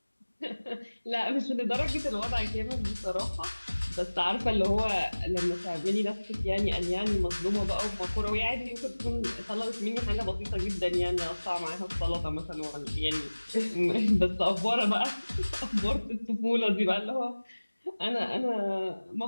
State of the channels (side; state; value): both; inverted; correlation -1.00